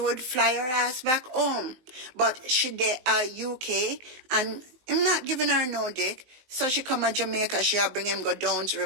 fly her ass back home. But she there UK, and I'm not giving her no dick. So she come to Jamaica, she'll bring him go down to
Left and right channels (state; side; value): late; left; 19 ms